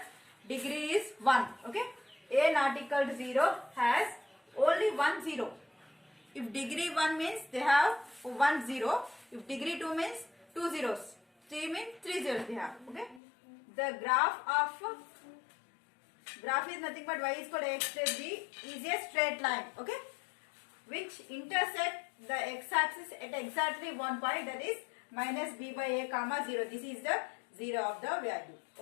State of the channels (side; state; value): right; drops out; at 13.2 s